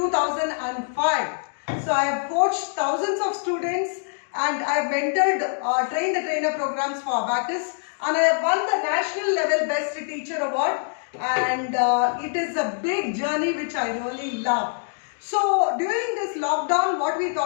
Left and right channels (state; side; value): silent; right; digital silence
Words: So I have coached thousands of students and I have mentored train the trainer programs for Abacus and I have won the national level best teacher award and it is a big journey which I really love. So during this lockdown, what we